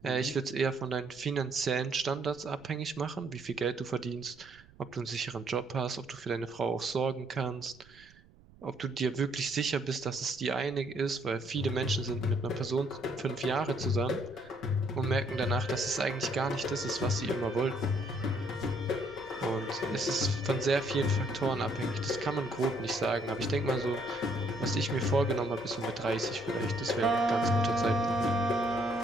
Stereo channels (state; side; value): noise; right; rumble, 26 dB below the sound